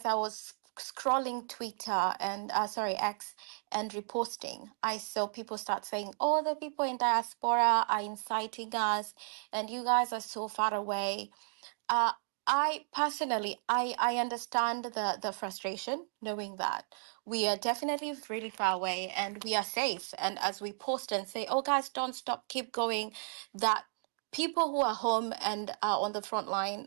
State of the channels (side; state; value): left; silent; digital silence